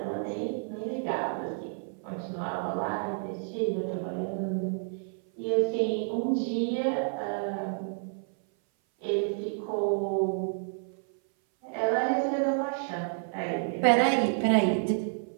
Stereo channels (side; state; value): left; silent; 57 dB below the other